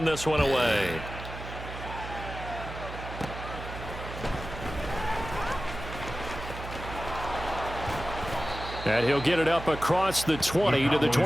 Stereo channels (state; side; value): noise; right; hum, 9 dB below the sound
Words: this one away. And he'll get it up across the 20 to the